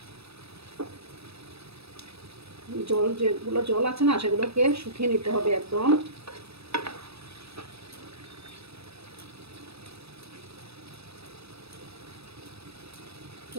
যেগুলো জল আছে না সেগুলোকে শুকিয়ে নিতে হবে একদম।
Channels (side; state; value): left; late; 0.78 ms